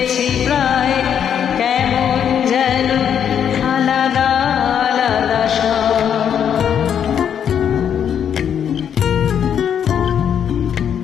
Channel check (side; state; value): right; quieter; 8.6 dB